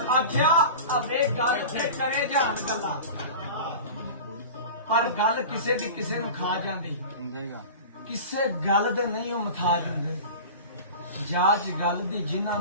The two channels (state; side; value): inverted; both; correlation -0.34